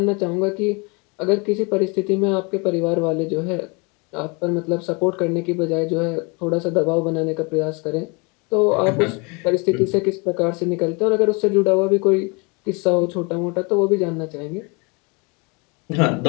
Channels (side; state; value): right; quieter; 30.1 dB